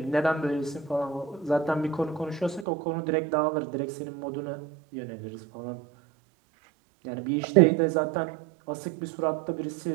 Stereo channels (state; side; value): drops out; left; at 2.7 s